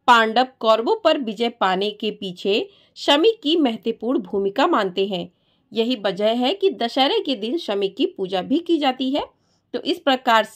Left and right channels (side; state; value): both; identical; correlation 1.00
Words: पांडव कौरवों पर विजय पाने के पीछे शमी की महत्वपूर्ण भूमिका मानते हैं। यही वजह है कि दशहरे के दिन शमी की पूजा भी की जाती है। तो इस प्रकार